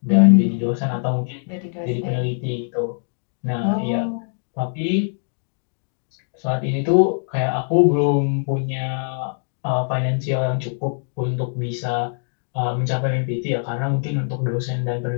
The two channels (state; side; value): silent; right; digital silence